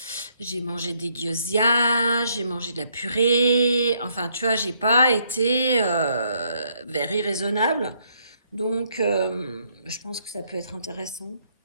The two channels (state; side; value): inverted; both; correlation -0.71